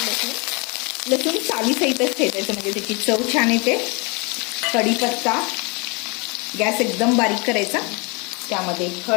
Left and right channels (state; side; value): quieter; right; 30.0 dB